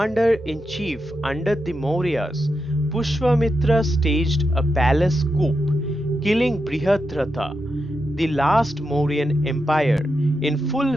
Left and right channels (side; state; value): both; normal; correlation 0.86